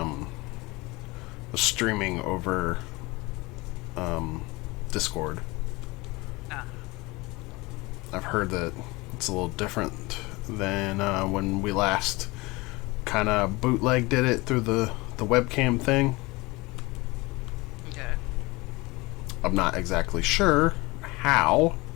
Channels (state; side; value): quieter; right; 23.3 dB